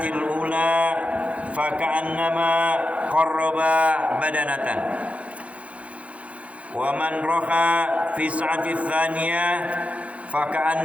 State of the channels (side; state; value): left; late; 0.064 ms